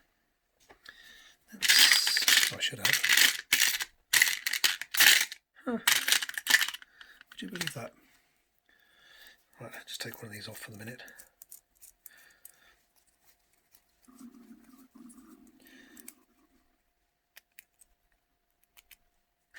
I should have. Huh. Would you believe that? Right, I'll just take one of these off for the minute.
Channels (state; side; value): identical; both; correlation 1.00